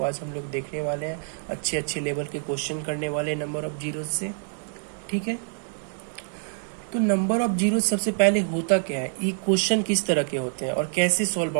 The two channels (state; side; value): silent; left; 61 dB below the other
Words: आज हम लोग देखने वाले हैं। अच्छे अच्छे लेवल के क्वेश्चन करने वाले हैं नंबर ऑफ जीरोज से, ठीक है। तो नंबर ऑफ जीरो सबसे पहले होता क्या है, ये क्वेश्चन किस तरह के होते हैं और कैसे सॉल्व